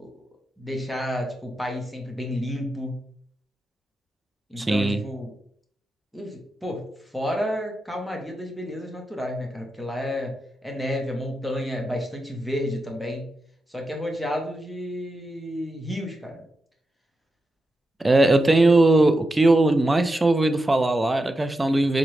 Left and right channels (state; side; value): normal; both; correlation 0.88